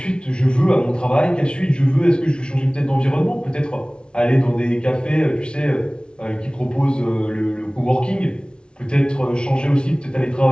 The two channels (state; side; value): late; right; 0.056 ms